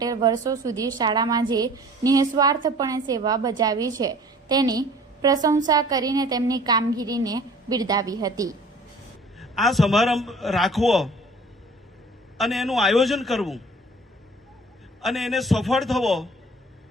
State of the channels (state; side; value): normal; both; correlation 0.48